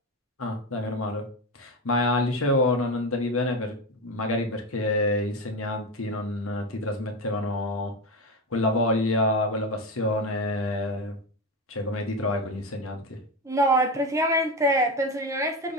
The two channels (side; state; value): both; normal; correlation 0.18